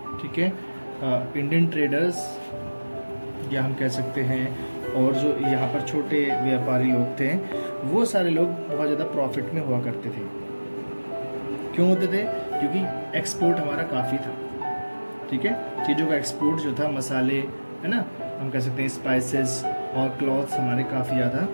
ठीक है, इंडियन ट्रेडर्स या हम कह सकते हैं, और जो यहाँ पर छोटे व्यापारी लोग थे, वो सारे लोग बहुत ज़्यादा प्रॉफिट में हुआ करते थे। क्यों होते थे? क्योंकि एक्सपोर्ट हमारा काफ़ी था, ठीक है, चीज़ों का एक्सपोर्ट जो था, मसाले, है ना, हम कह सकते हैं स्पाइसेस और क्लॉथ्स हमारे काफ़ी ज़्यादा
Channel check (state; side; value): inverted; both; correlation -1.00